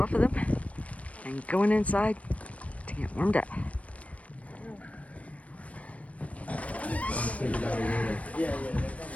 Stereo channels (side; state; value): right; late; 0.066 ms